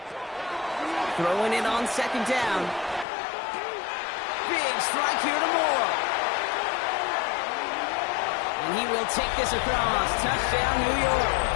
Throwing it on 2nd down. Big strike here to Moore. And he will take this across. Touchdown, New York.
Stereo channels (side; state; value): right; drops out; at 3.1 s